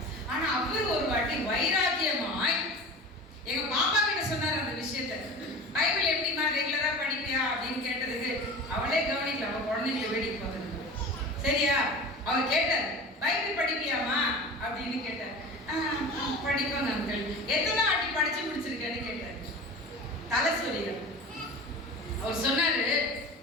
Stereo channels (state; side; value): normal; both; correlation 0.35